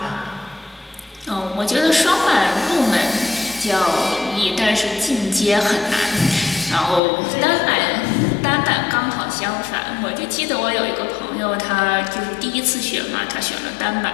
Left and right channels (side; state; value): right; drops out; at 7.0 s